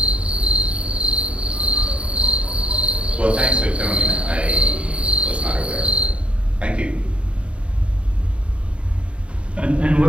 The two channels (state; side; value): late; left; 0.059 ms